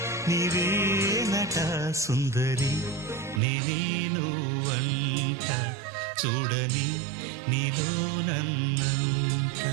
నీవేనట సుందరి నీనువంట చూడని నీలో నన్నంత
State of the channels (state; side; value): drops out; left; at 3.4 s